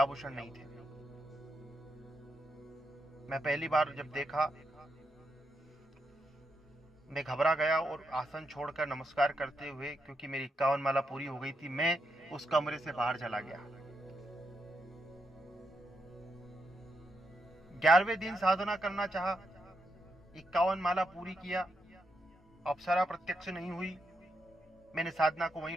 नहीं थे। मैं पहली बार जब देखा, मैं घबरा गया और आसन छोड़कर नमस्कार करते हुए, क्योंकि मेरी 51 माला पूरी हो गई थी, मैं उस कमरे से बाहर चला गया। 11वें दिन साधना करना चाहा, 51 माला पूरी किया, अप्सरा प्रत्यक्ष नहीं हुई। मैंने साधना को वहीं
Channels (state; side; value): normal; both; correlation 0.82